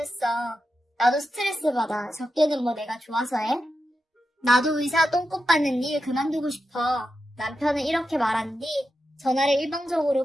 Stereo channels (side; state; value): both; normal; correlation 0.89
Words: 나도 스트레스 받아. 접대는 뭐 내가 좋아서 해? 나도 의사 똥꼬 빠는 일 그만두고 싶어. 남편은 이렇게 말한 뒤 전화를